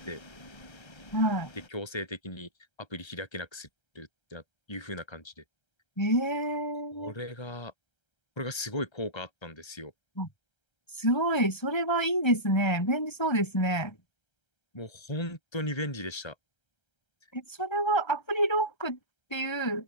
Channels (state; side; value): late; right; 1.3 ms